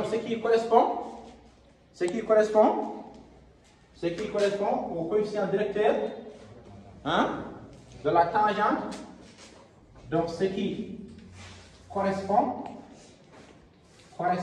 ce qui correspond au coefficient directeur, hein, de la tangente. Donc, ce qui correspond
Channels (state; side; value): identical; both; correlation 1.00